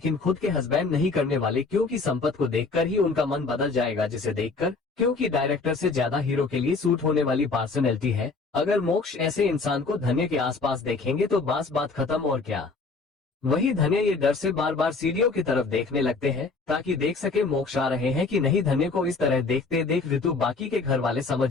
खुद के हस्बैंड नहीं करने वाले, क्योंकि संपत को देखकर ही उनका मन बदल जाएगा, जिसे देखकर, क्योंकि डायरेक्टर से ज्यादा हीरो के लिए सूट होने वाली पर्सनैलिटी है। अगर मोक्ष ऐसे इंसान को धन्य के आसपास देखेंगे तो बस बात खत्म, और क्या। वही धन्य ये डर से बार बार सीढ़ियों की तरफ देखने लगते हैं ताकि देख सके मोक्ष आ रहे हैं कि नहीं। धन्य को इस तरह देखते देख ऋतु बाकी के घर वाले समझ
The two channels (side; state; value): right; quieter; 4.0 dB